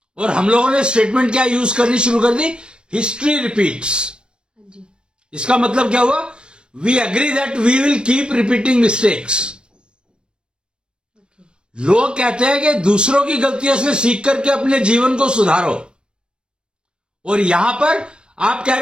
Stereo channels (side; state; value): left; late; 0.054 ms